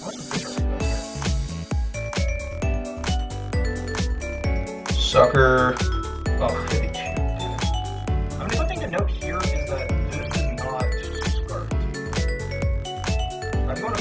What's the picture Sucker. Oh, 52. I mean, the one thing to note here is that this is not scarfed. I'm going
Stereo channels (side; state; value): both; identical; correlation 1.00